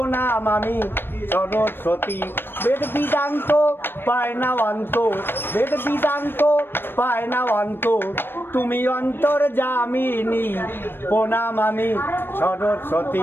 আমি সরস্বতী, বেদ বিদান্ত পায় না অন্ত, বেদ বিদান্ত পায় না অন্ত, তুমি অন্তর জামিনী। প্রণাম আমি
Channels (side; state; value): right; late; 0.10 ms